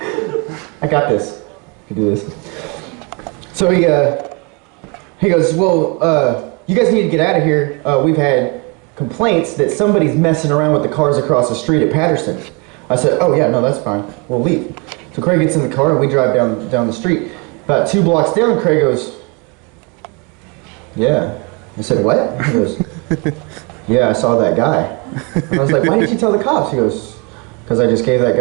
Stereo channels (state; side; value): quieter; left; 31.6 dB